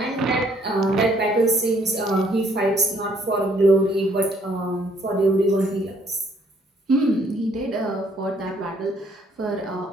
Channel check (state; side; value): normal; both; correlation 0.65